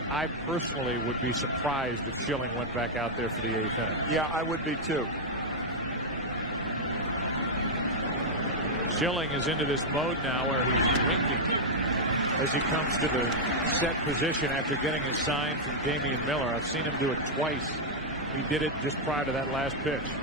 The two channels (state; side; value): normal; both; correlation -0.03